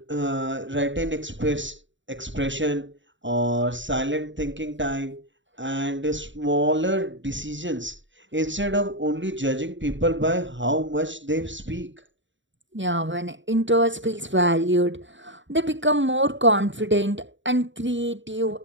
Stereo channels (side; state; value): left; late; 0.55 ms